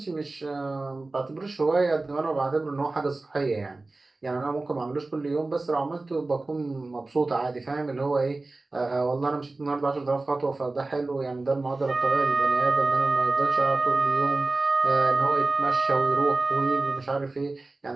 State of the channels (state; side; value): quieter; left; 3.2 dB